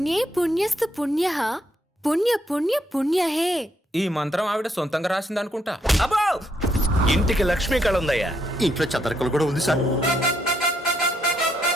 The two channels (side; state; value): both; normal; correlation 0.75